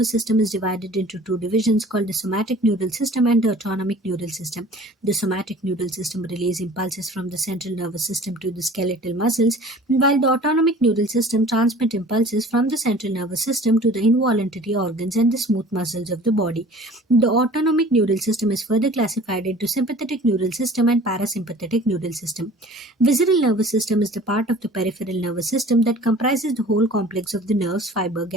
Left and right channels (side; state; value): both; normal; correlation 0.46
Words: system is divided into two divisions called the somatic neural system and the autonomic neural system. The somatic neural system relays impulses from the central nervous system to the skeletal muscles, while the autonomic neural system transmits impulses from the central nervous system to the involuntary organs and the smooth muscles of the body. The autonomic neural system is further classified into sympathetic neural system and parasympathetic neural system. Visceral nervous system is the part of the peripheral nervous system that comprises the whole complex of the nerves, fiber,